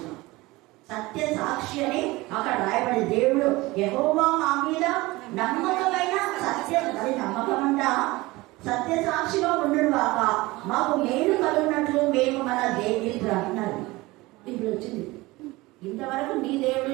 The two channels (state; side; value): quieter; left; 21.0 dB